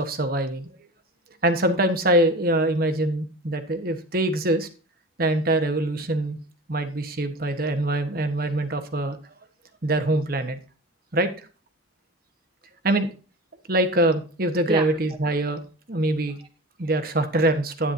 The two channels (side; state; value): both; normal; correlation 0.35